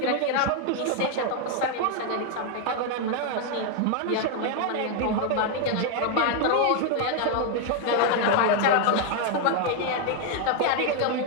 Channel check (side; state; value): both; different; correlation 0.01